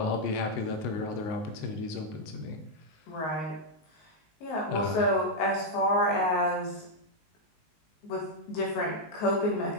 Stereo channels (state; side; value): late; right; 19 ms